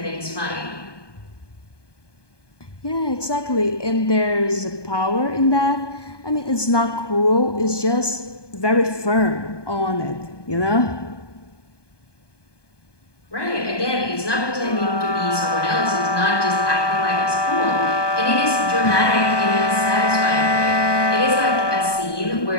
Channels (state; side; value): late; right; 1.2 ms